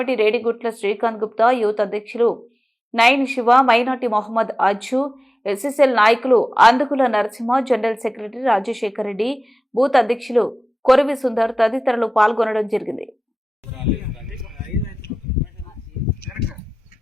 రేడిగుట్ల శ్రీకాంత్ గుప్తా, యూత్ అధ్యక్షులు నయన్ శివ, మైనార్టీ మొహమ్మద్ అజ్జు, ఎస్ఎస్ఎల్ నాయకులు Andukula Narasimha, general secretary Rajasekhar Reddy, booth అధ్యక్షులు కొరవి సుందర్ తదితరులు పాల్గొనడం జరిగింది.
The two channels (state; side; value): normal; both; correlation 0.96